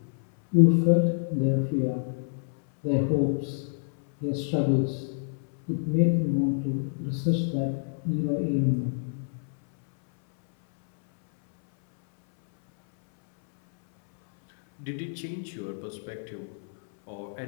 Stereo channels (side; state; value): right; silent; 60 dB below the other